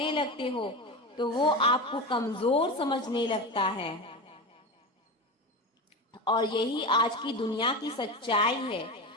लगते हो तो वो आपको कमजोर समझने लगता है। और यही आज की दुनिया की सच्चाई है।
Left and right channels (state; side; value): normal; both; correlation 0.23